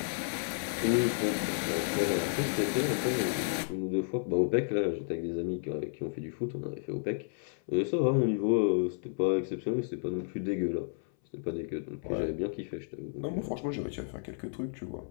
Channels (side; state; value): right; silent; 56 dB below the other